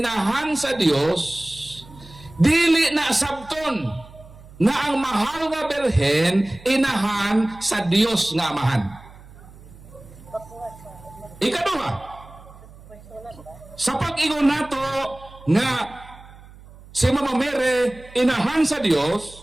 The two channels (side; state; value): right; noise; hum, 21 dB below the sound